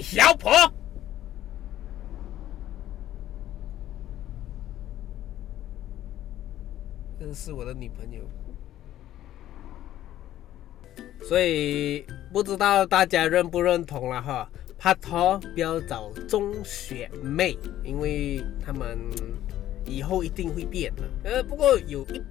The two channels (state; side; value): quieter; right; 12.9 dB